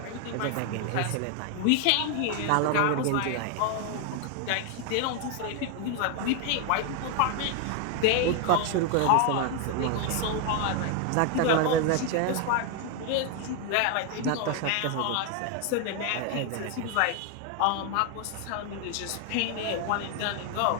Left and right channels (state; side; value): different; both; correlation 0.01